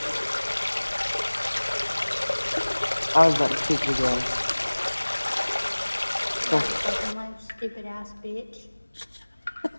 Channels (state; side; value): inverted; both; correlation -1.00